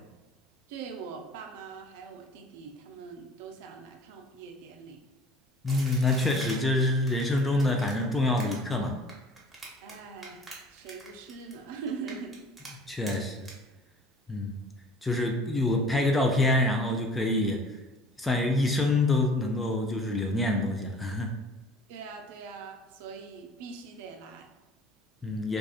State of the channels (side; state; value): both; normal; correlation 0.47